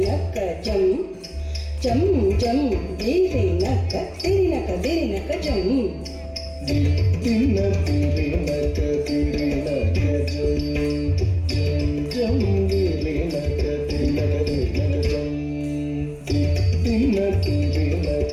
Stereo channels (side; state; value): both; identical; correlation 1.00